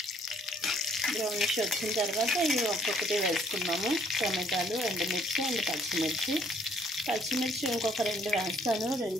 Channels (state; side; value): normal; both; correlation 0.64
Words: బ్రౌనిష్ వచ్చిన తర్వాత ఇవి ఒక్కొక్కటి వేసుకున్నాము. టమాటాలు, ఎండుమిర్చి అండ్ పచ్చిమిర్చి ఇంకొక 2 వేస్తాను.